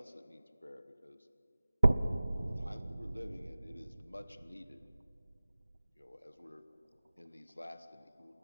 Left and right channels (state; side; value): inverted; both; correlation -0.99